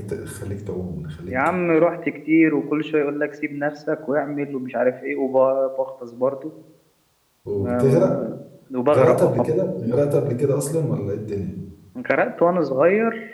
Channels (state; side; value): identical; both; correlation 1.00